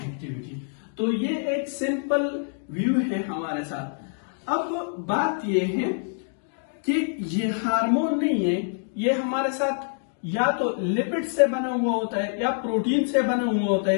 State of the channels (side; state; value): right; silent; digital silence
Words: तो ये एक सिंपल व्यू है हमारे साथ। अब बात ये है कि ये हार्मोन नहीं है, ये हमारे साथ या तो लिपिड से बना हुआ होता है या प्रोटीन से बना हुआ होता